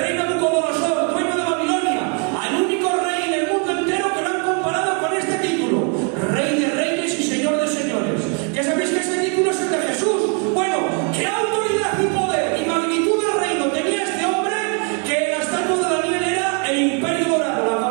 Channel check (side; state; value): left; quieter; 36.8 dB